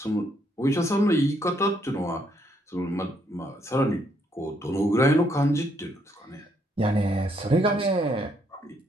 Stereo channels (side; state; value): both; normal; correlation 0.72